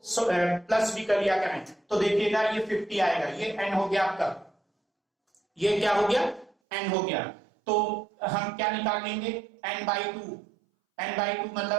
प्लस भी कर लिया करें तो देखिएगा ये 50 आएगा, ये n हो गया आपका, ये क्या हो गया, n हो गया। तो हम क्या निकाल लेंगे, n/2, n/2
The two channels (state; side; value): drops out; left; at 6.5 s